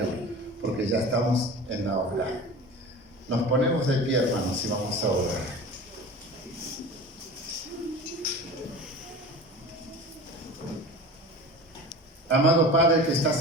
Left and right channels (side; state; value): both; normal; correlation 0.36